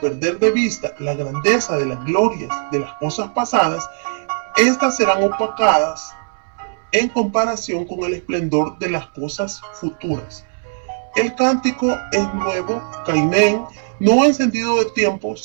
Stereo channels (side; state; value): left; silent; 63 dB below the other